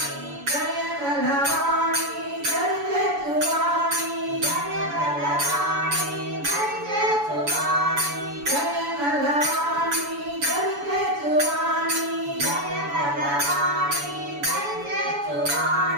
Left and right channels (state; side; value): late; left; 7.0 ms